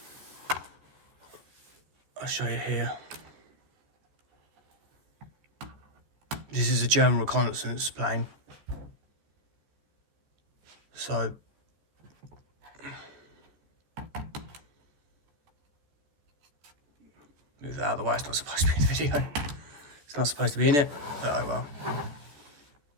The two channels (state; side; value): late; left; 14 ms